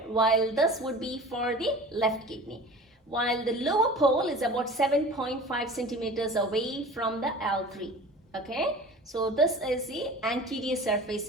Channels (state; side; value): normal; both; correlation 0.39